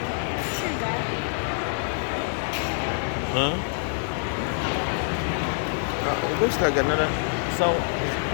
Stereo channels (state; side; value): silent; right; 61 dB below the other